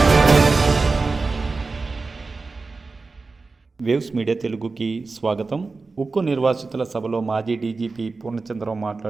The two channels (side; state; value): left; quieter; 4.0 dB